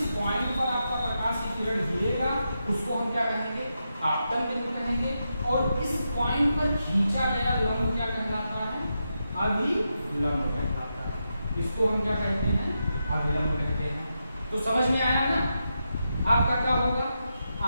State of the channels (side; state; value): both; inverted; correlation -0.86